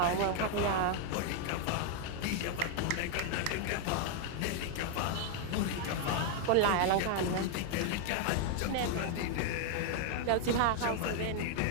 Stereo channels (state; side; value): different; both; correlation 0.00